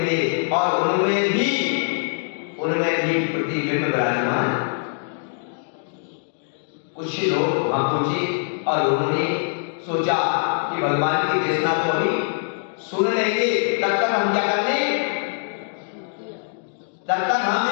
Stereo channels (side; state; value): right; silent; digital silence